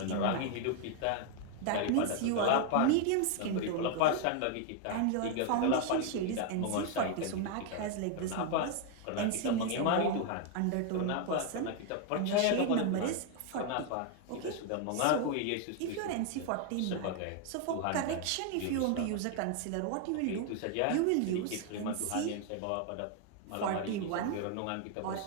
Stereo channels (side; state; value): both; different; correlation 0.00